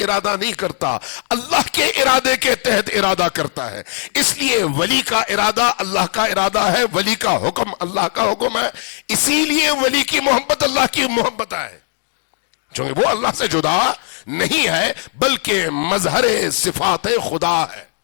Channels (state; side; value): silent; right; 67 dB below the other